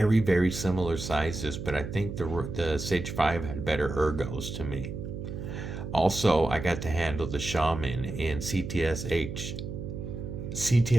very similar sizes, but I think the Sage 5 had better ergos to me. Also, I got to handle the Shaman in CTS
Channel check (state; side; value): noise; right; hum, 7 dB below the sound